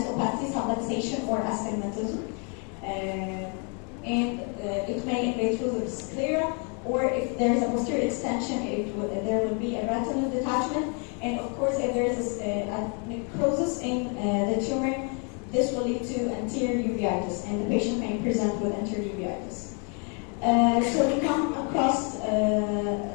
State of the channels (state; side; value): quieter; right; 37.9 dB